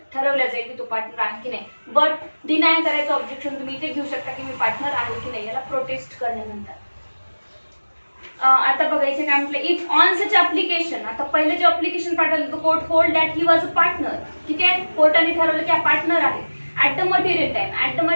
ठरवलं जाईल की तो पार्टनर आहे की नाही. बट डिनाय करायचं ऑब्जेक्शन तुम्ही इथे घेऊ शकता की मी पार्टनर आहे की नाही, याला प्रोटेस्ट करणे म्हणतात. आता बघायचं काय म्हटलं, इफ ऑन सच ऍप्लिकेशन, आता पहिले जे ऍप्लिकेशन पाठवलं तो court hold that he was a partner. ठीक आहे, कोर्टाने ठरवलं की हा पार्टनर आहे at the material time. At the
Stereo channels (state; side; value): inverted; both; correlation -1.00